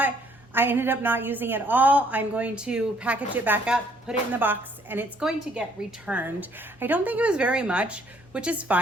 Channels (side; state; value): both; normal; correlation 0.64